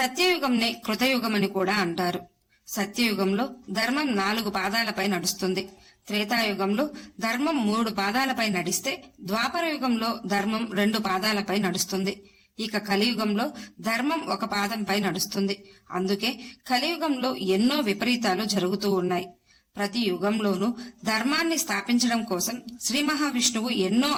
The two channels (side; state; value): both; identical; correlation 1.00